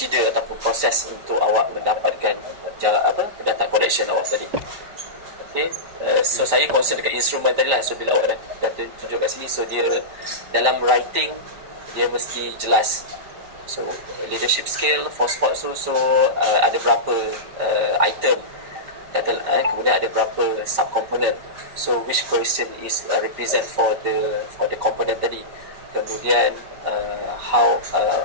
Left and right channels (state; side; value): late; left; 5.2 ms